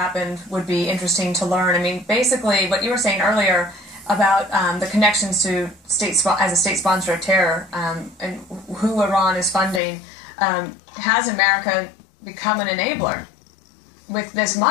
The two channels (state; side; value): drops out; right; at 9.8 s